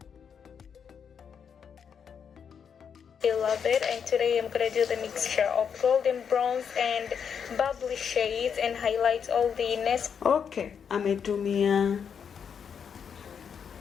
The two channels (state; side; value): quieter; right; 7.2 dB